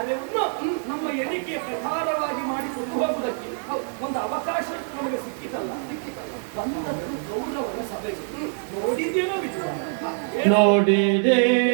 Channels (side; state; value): left; silent; 62 dB below the other